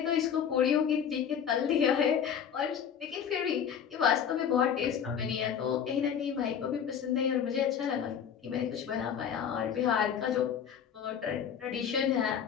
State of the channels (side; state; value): right; quieter; 8.1 dB